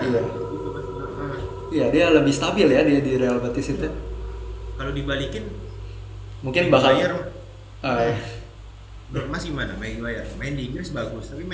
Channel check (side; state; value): both; identical; correlation 1.00